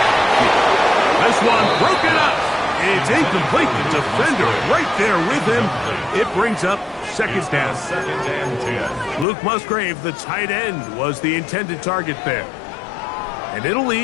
on the field. This one broken up. It's incomplete. The defender right there with him. It brings up 2nd down. 2nd and 10. Luke Musgrave, the tight end, was the intended target there. And it'll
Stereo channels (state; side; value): drops out; right; at 9.2 s